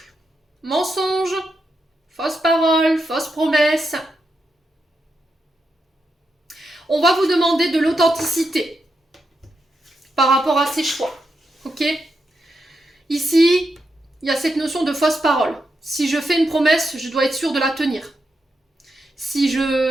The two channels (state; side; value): normal; both; correlation 0.85